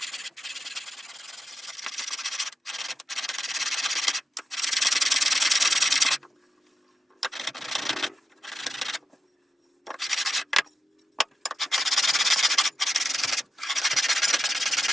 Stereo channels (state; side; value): normal; both; correlation 0.89